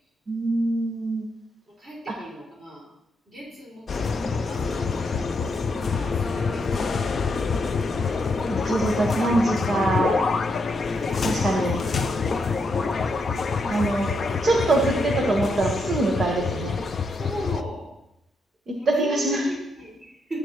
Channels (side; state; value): both; normal; correlation 0.79